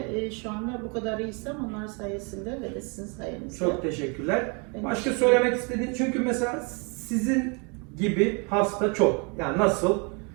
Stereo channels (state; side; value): quieter; left; 33.9 dB